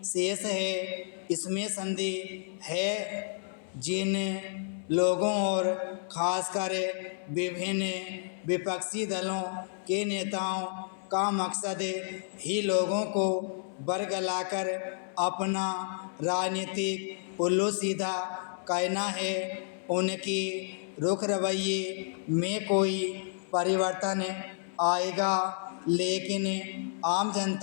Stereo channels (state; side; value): silent; right; 57 dB below the other